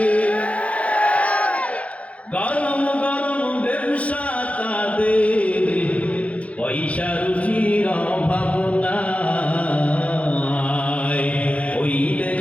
গরম গরম ব্যবসা তাদের, পয়সা রুচির অভাব নাই, ওই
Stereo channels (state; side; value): late; right; 0.065 ms